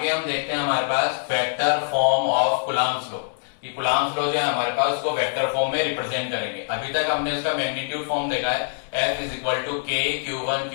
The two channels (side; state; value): right; silent; digital silence